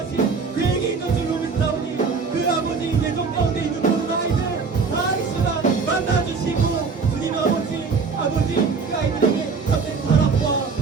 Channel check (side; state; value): left; quieter; 5.0 dB